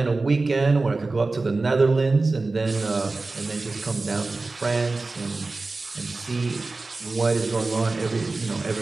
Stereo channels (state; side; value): quieter; left; 3.5 dB